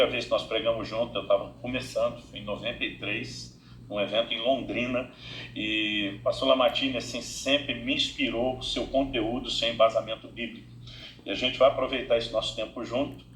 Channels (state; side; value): identical; both; correlation 1.00